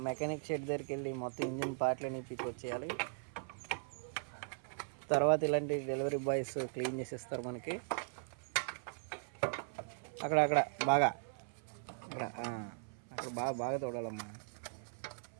మెకానిక్ షెడ్ దగ్గరికి వెళ్ళి మొత్తం ఇంజిన్ పార్ట్లని వచ్చేయాలి. తర్వాత ఇలాంటి డెలివరీ బాయ్స్ క్లీన్ చేసేస్తారు మనకి. అక్కడ బాగా అక్కడ బాగా తోడాలమ్మా.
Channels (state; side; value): silent; left; 52 dB below the other